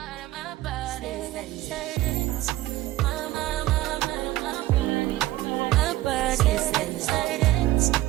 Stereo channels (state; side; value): quieter; left; 16.5 dB